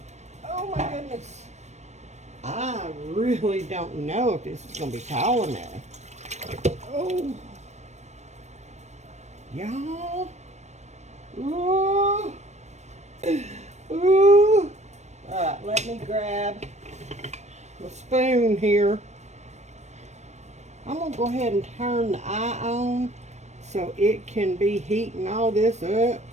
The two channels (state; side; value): late; left; 0.33 ms